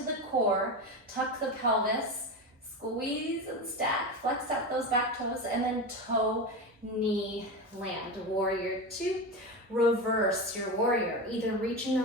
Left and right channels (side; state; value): both; normal; correlation 0.21